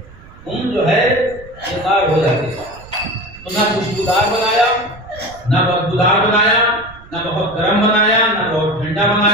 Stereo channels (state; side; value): noise; right; rumble, 21 dB below the sound